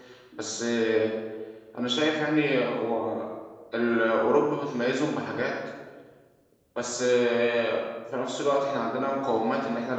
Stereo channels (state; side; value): identical; both; correlation 1.00